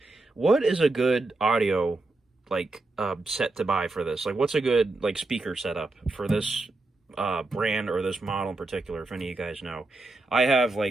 What is a good audio, set to buy for this? What's a good, speaker setup for this brand or this model in particular, if any of you guys know? I have,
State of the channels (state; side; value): quieter; left; 3.1 dB